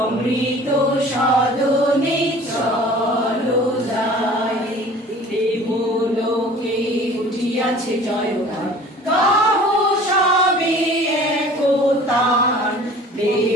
সদনে চলো যাই। দেবলোকে উঠিয়াছে জয়গান, গাহ সবে একতান।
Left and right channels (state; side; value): normal; both; correlation 0.46